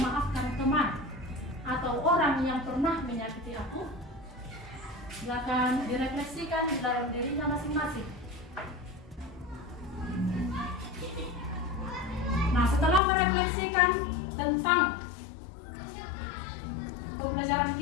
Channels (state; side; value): drops out; right; at 13.0 s